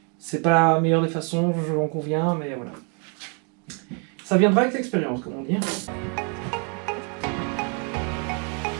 c'est pas la meilleure des façons, je m'en conviens, mais voilà. Ça viendra avec l'expérience, comme on dit.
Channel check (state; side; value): quieter; left; 38.0 dB